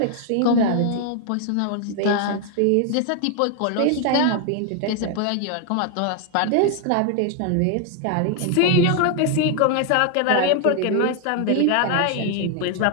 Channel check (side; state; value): both; different; correlation 0.00